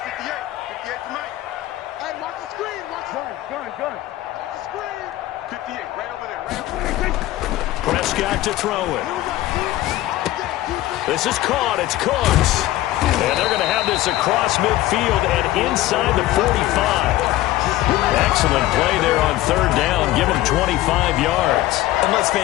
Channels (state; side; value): quieter; right; 15.7 dB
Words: Prescott to throw it. This is caught. It's Cooks. And they're going to have this across midfield and inside the 45. Excellent play there on 3rd down. Give him 25 yards. And let's